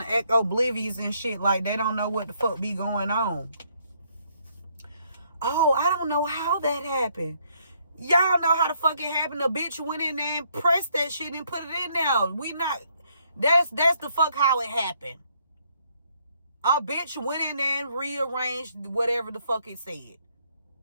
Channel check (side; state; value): both; inverted; correlation -0.70